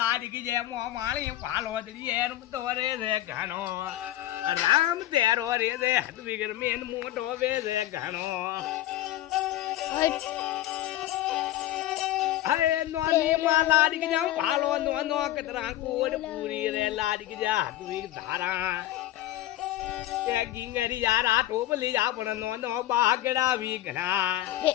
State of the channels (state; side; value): quieter; right; 14.2 dB